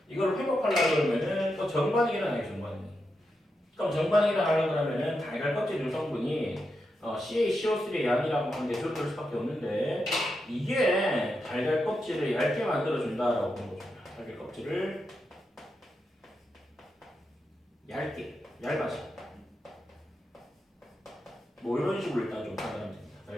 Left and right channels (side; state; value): both; normal; correlation 0.86